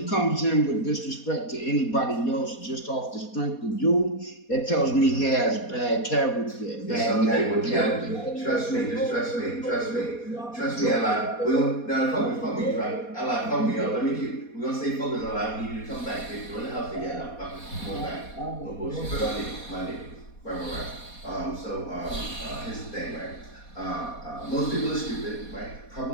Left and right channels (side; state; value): right; late; 4.2 ms